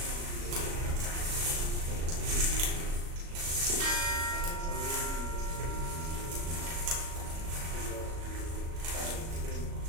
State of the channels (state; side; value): late; left; 37 ms